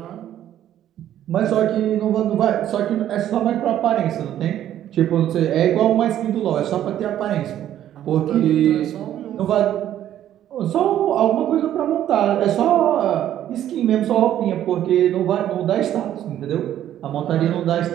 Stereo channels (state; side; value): quieter; left; 11.6 dB